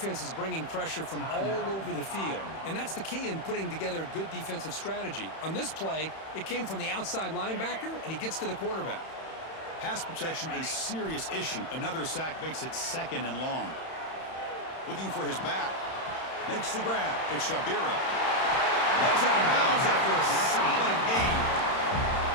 is bringing pressure from all over the field, and that's the key in putting together a good defensive strategy. On this play, it came from the outside linebacker, and he gets to the quarterback. Pass protection a serious issue. Another sack makes it 2nd and long. Looking for his back. Makes the grab. It's Shabira. Heads out of bounds after a solid gain.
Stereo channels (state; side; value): late; right; 31 ms